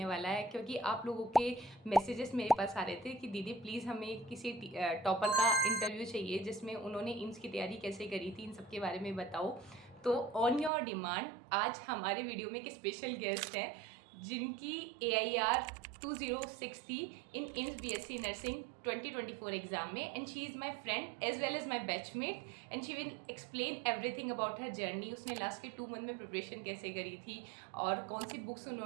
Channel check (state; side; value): drops out; left; at 10.7 s